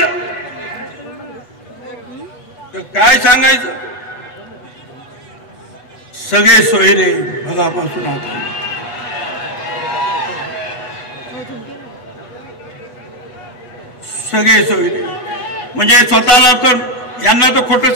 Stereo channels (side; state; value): right; late; 8.2 ms